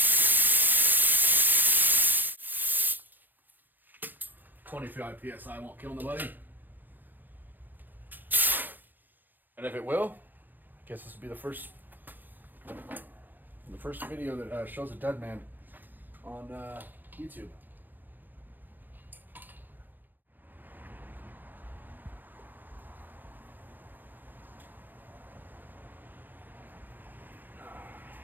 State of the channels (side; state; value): left; late; 0.087 ms